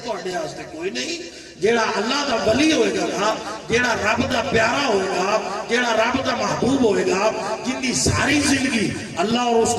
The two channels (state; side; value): identical; both; correlation 1.00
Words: تواڈے واسطے کوئی نہیں۔ جیڑا اللہ دا ولی ہوئے گا، جیڑا رب دا پیارا ہوئے گا، جیڑا رب دا محبوب ہوئے گا، جن دی ساری زندگی اللہ اور اس